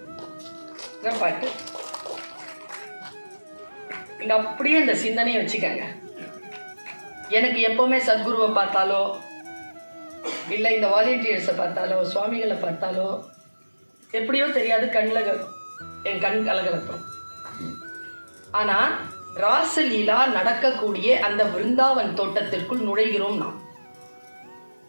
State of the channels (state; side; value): inverted; both; correlation -1.00